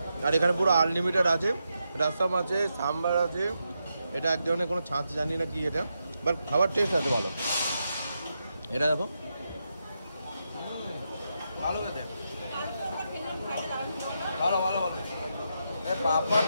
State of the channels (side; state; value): both; inverted; correlation -0.85